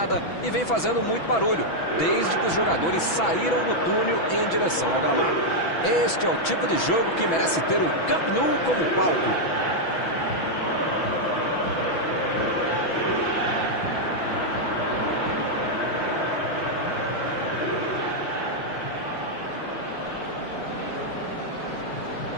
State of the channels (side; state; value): right; late; 6.1 ms